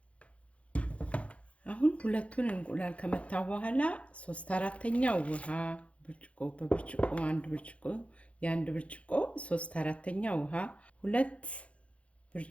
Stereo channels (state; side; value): late; right; 0.063 ms